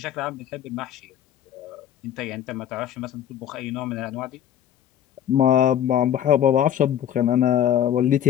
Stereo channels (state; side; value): quieter; right; 10.3 dB